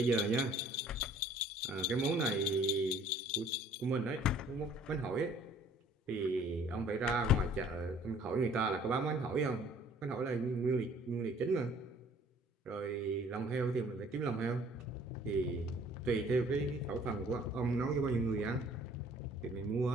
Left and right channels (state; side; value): normal; both; correlation 0.55